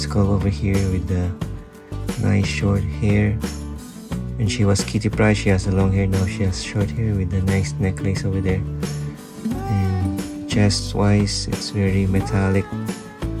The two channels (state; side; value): identical; both; correlation 1.00